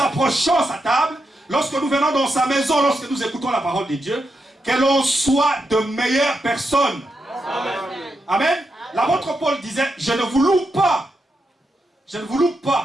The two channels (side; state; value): both; normal; correlation 0.85